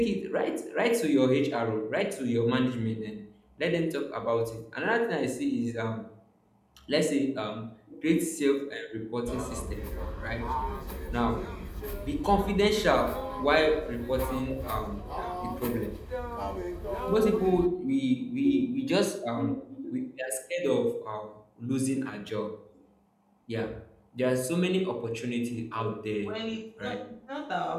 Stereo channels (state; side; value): identical; both; correlation 1.00